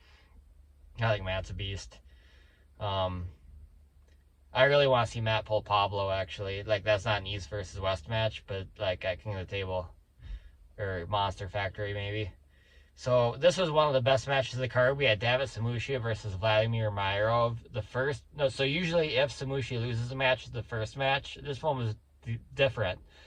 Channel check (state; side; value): identical; both; correlation 1.00